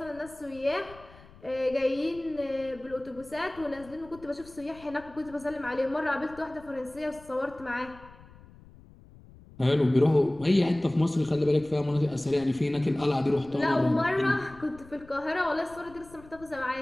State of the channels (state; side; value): noise; left; rumble, 22 dB below the sound